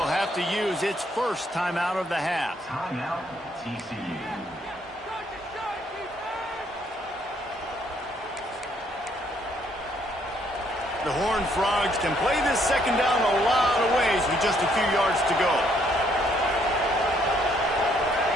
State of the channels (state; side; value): normal; both; correlation 0.69